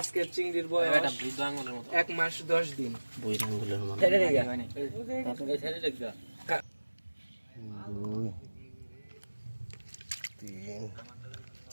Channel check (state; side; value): inverted; both; correlation -1.00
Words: চিংড়ির বয়স 1 মাস 10 দিন বই রঙগুলোর মানে তিন